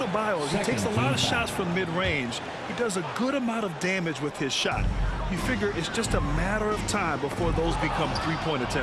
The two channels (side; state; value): both; identical; correlation 1.00